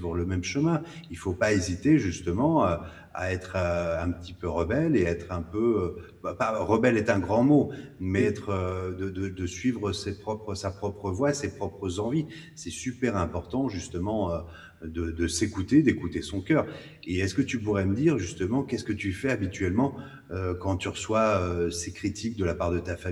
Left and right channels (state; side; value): identical; both; correlation 1.00